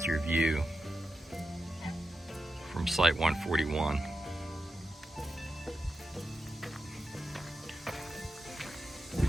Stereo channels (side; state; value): both; normal; correlation 0.89